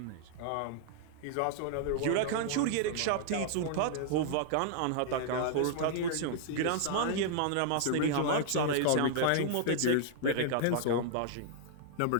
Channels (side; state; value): both; different; correlation -0.01